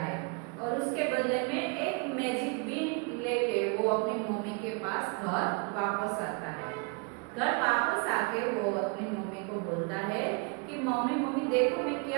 और उसके बदले में एक मैजिक बीन लेके वो अपनी मम्मी के पास घर वापस आता है। घर वापस आके वो अपनी मम्मी को बोलता है कि मम्मी देखो मैं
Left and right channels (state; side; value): quieter; left; 32.8 dB